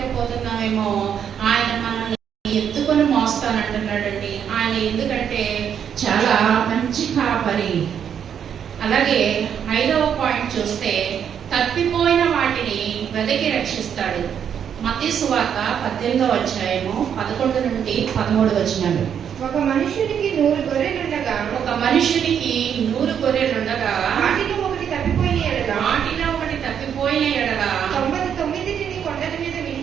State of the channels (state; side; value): quieter; left; 8.3 dB